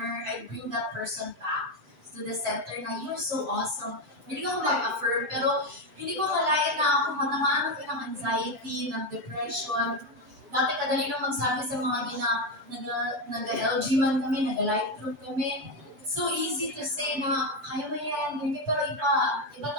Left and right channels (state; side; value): late; left; 6.9 ms